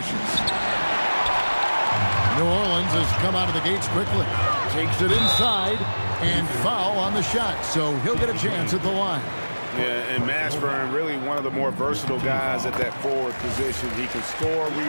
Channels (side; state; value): both; inverted; correlation -1.00